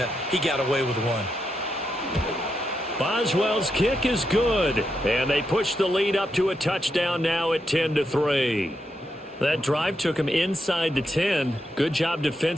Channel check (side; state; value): both; normal; correlation 0.83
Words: He got away with one. Boswell's kick is good. And they push the lead up to a touchdown now at 10-3. That drive took him inside the 10. Good job